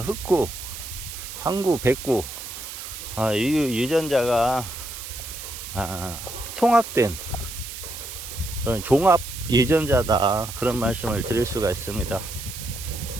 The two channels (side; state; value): right; noise; hiss, 10 dB below the sound